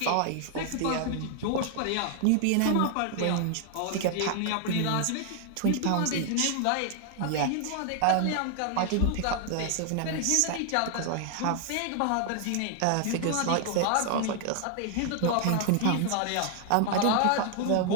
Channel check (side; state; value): both; different; correlation 0.00